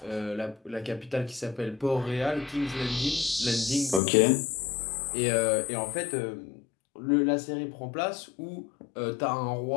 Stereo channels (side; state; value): right; drops out; at 4.0 s